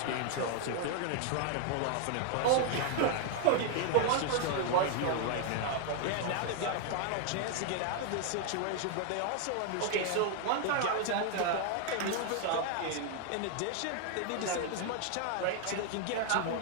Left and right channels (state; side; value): different; both; correlation 0.00